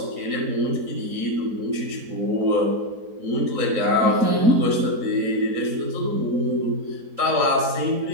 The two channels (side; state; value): left; late; 3.9 ms